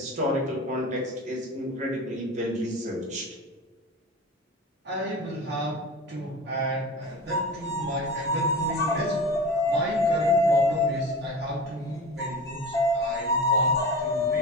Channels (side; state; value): both; normal; correlation 0.32